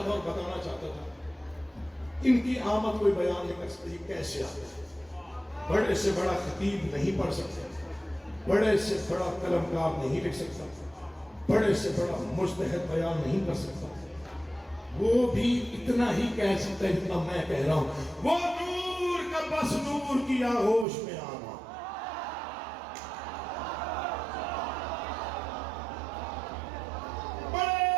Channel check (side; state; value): left; drops out; at 20.9 s